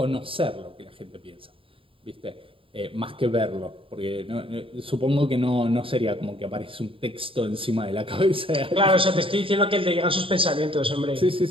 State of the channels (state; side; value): late; left; 0.26 ms